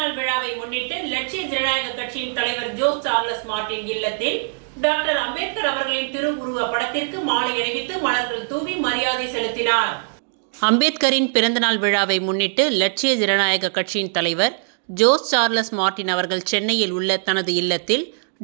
விழாவை முன்னிட்டு லட்சிய ஜனநாயக கட்சியின் தலைவர் ஜோஸ் சார்லஸ் மார்டின் இல்லத்தில் டாக்டர் அம்பேத்கர் அவர்களின் திருவுருவ படத்திற்கு மாலை அணிவித்து மலர்கள் தூவி மரியாதை செலுத்தினார். அம்பேத்கரின் பிறந்தநாள் விழாவை முன்னிட்டு லட்சிய ஜனநாயக கட்சியின் தலைவர் ஜோஸ் சார்லஸ் மார்டின் அவர்கள் சென்னையில் உள்ள தனது இல்லத்தில்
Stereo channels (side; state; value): left; silent; digital silence